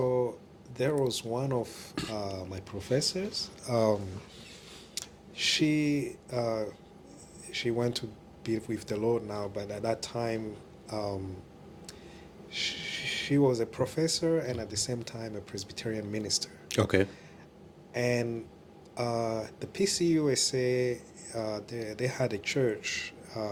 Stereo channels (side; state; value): both; identical; correlation 1.00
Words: there was one of my professors. She went to be with the Lord now, but at that time she was a professor and at the same time a Presbyterian minister. Okay. And the pcusa, they had a church